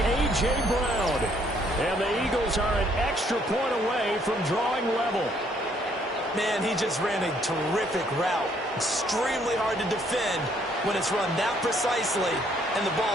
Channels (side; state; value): both; normal; correlation 0.66